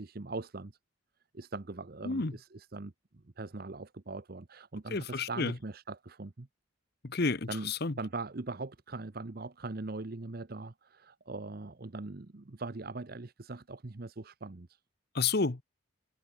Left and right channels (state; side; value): normal; both; correlation 0.29